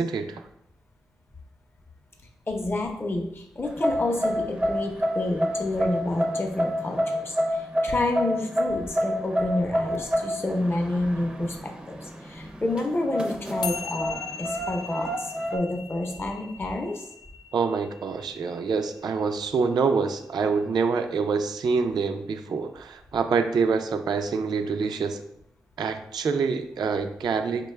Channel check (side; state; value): both; normal; correlation 0.82